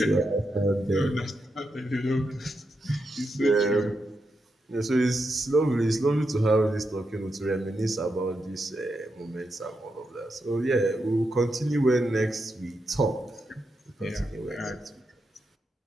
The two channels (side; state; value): both; normal; correlation 0.85